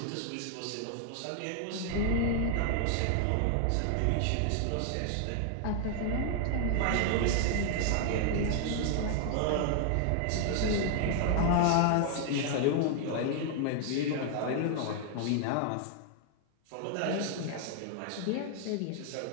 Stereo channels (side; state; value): both; different; correlation 0.00